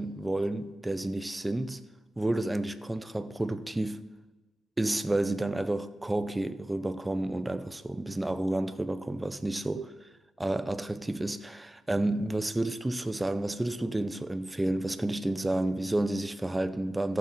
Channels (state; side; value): normal; both; correlation 0.97